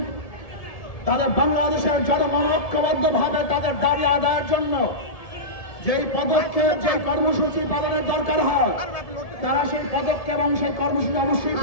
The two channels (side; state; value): right; late; 1.7 ms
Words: তাদের বাংলাদেশের জনগণ ঐক্যবদ্ধ ভাবে তাদের দাবি আদায়ের জন্য যেই পদক্ষেপ, যে কর্মসূচি পালনের দরকার হয়, তারা সেই পদক্ষেপ এবং সেই কর্মসূচি অবশ্যই